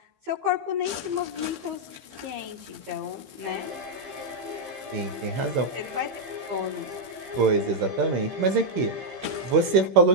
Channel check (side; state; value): left; late; 16 ms